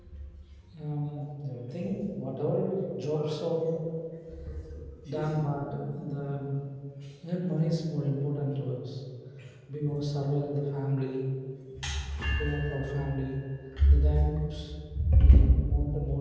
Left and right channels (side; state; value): both; identical; correlation 1.00